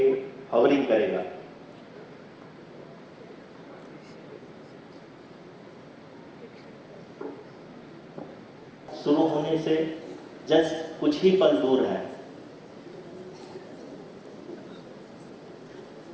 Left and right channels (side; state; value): both; identical; correlation 1.00